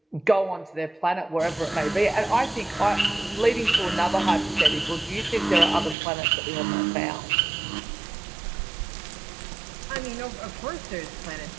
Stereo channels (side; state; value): left; drops out; at 6.0 s